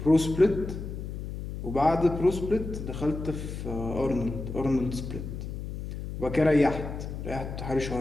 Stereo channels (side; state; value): left; noise; hum, 7 dB below the sound